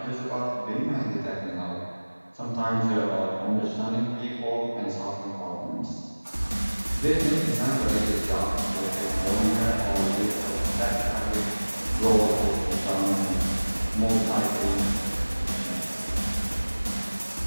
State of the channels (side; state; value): both; inverted; correlation -1.00